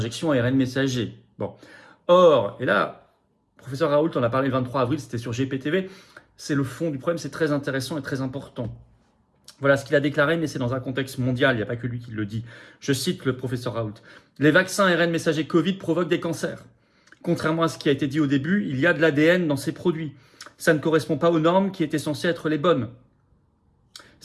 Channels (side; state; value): both; identical; correlation 1.00